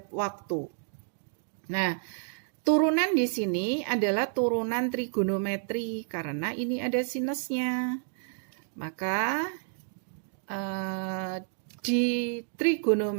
waktu. Nah, turunan di sini adalah turunan trigonometri karena ini ada sinusnya. Maka di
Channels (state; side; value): silent; left; digital silence